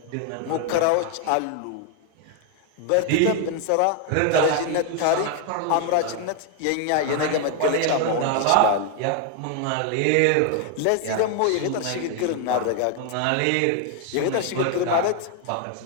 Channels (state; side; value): different; both; correlation 0.01